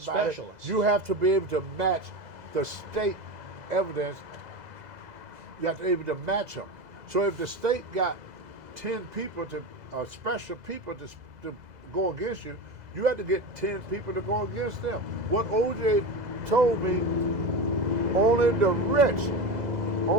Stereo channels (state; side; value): late; left; 2.0 ms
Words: Specialist. You have to be able to match the state evidence. You have to be able to match them. So if the state got 10 people special people to go against you, you have to get 10 people to go against them. What OJ told me, only the rich